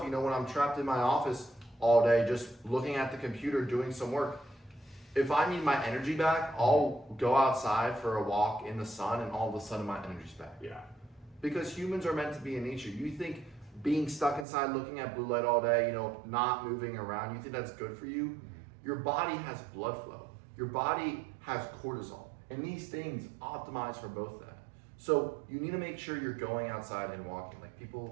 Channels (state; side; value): drops out; left; at 14.5 s